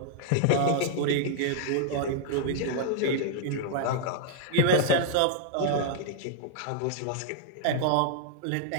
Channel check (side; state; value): both; different; correlation -0.01